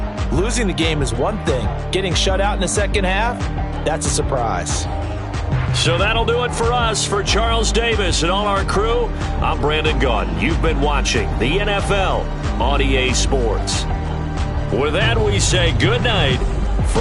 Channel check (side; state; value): both; identical; correlation 1.00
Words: Losing the game is one thing. Getting shut out in the second half, that's a surprise. So that'll do it for us. For Charles Davis and all our crew, I'm Brandon Gaudin. You've been watching the NFL on EA Sports. With that, we say good night